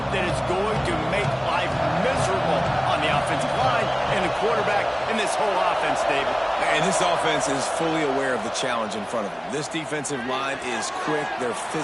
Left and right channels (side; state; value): both; identical; correlation 1.00